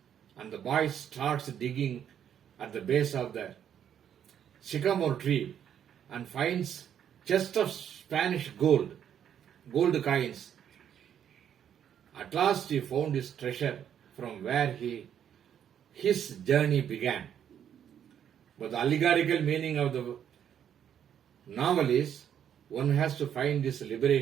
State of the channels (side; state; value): left; quieter; 9.2 dB